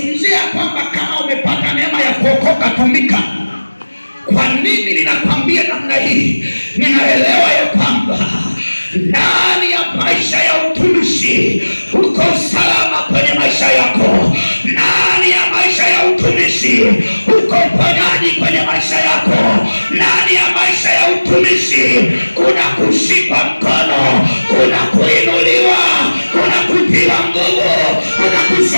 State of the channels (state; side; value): inverted; both; correlation -1.00